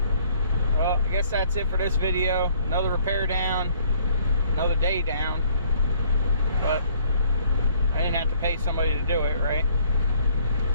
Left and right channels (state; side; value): inverted; both; correlation -0.61